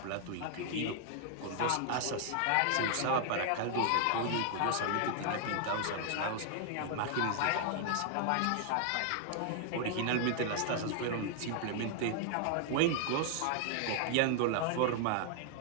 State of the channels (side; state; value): both; different; correlation 0.00